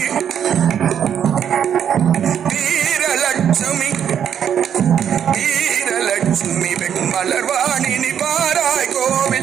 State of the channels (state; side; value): quieter; left; 8.8 dB